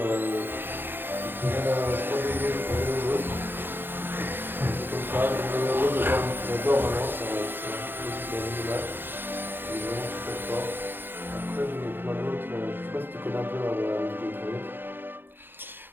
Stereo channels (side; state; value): left; late; 0.097 ms